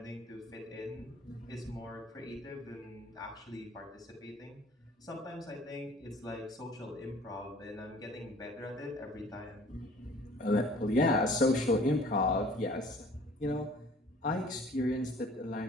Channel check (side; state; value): both; normal; correlation 0.51